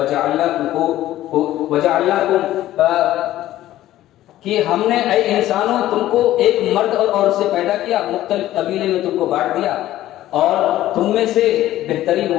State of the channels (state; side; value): quieter; right; 14.2 dB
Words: وجعلناکم، کہ ہم نے اے انسانوں تم کو ایک مرد اور عورت سے پیدا کیا، مختلف قبیلے میں تم کو بانٹ دیا، اور تم میں سے بہترین